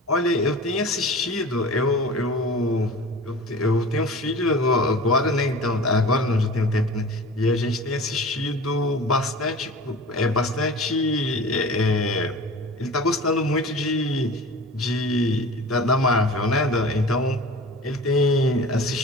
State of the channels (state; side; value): normal; both; correlation 0.38